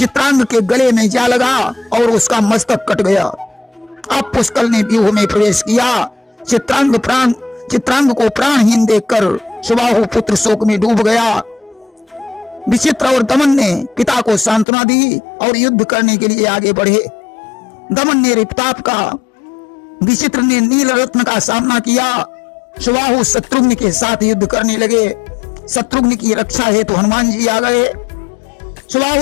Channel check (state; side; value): drops out; right; at 14.7 s